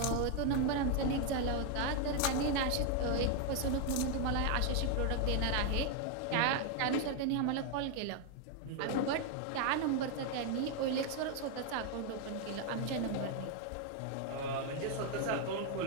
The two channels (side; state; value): both; different; correlation 0.01